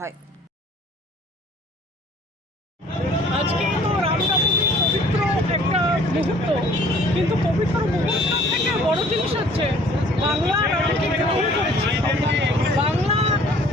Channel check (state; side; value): normal; both; correlation 0.54